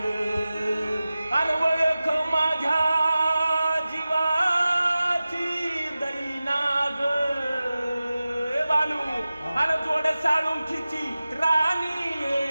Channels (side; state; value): both; inverted; correlation -0.96